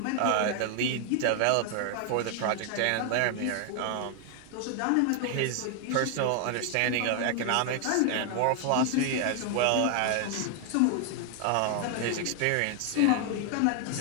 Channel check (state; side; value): different; both; correlation 0.00